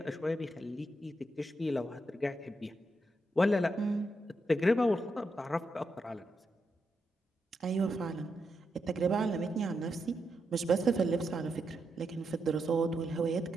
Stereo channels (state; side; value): normal; both; correlation 0.84